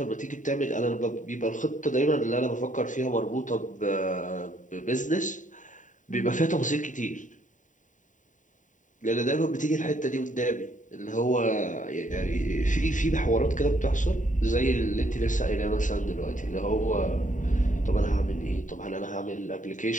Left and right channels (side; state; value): right; late; 0.37 ms